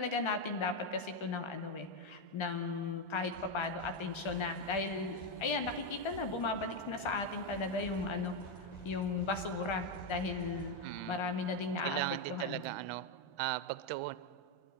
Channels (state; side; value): late; right; 1.3 ms